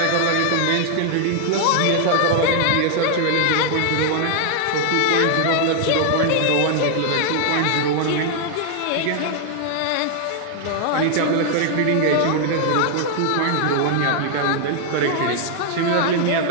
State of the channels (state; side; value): different; both; correlation 0.00